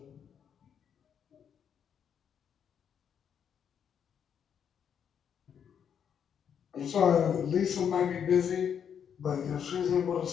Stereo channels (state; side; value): quieter; right; 8.0 dB